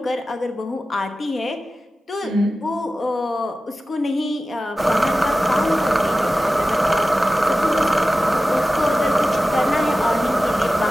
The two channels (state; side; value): normal; both; correlation 0.95